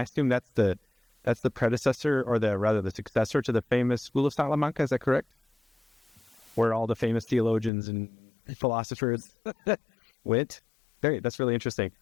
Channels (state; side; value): drops out; right; at 7.7 s